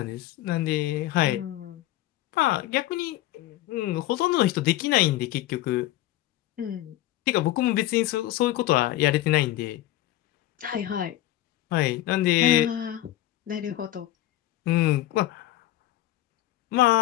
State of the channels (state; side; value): quieter; right; 15.0 dB